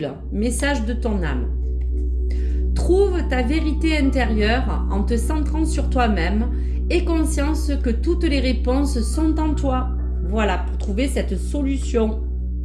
Message de ton âme. Trouve ta vérité intérieure en te centrant sur toi-même et conscience que toutes les réponses sont en toi. Voilà, pour trouver cette solution.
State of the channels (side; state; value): both; identical; correlation 1.00